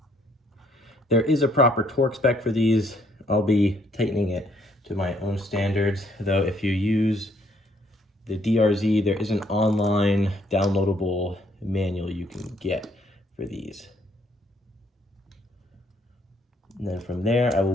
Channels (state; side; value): normal; both; correlation 0.67